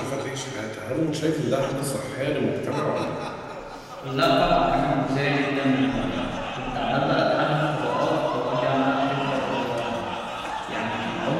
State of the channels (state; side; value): identical; both; correlation 1.00